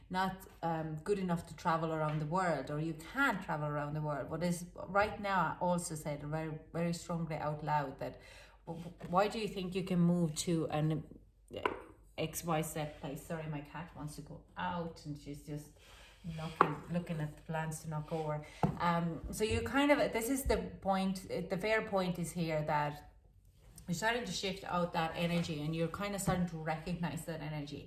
not good enough to travel around the world, or you can't travel around the world. What is right now also said very, very strongly out loud that why do you think you can move to an XYZ place? Sorry, my cat wants to go out and she's just looking at the plants to knock over. So you kind of, this is the point, the fair point is here that you're starting to shift out that energy, and you're kind of starting to recognize that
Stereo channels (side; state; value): both; identical; correlation 1.00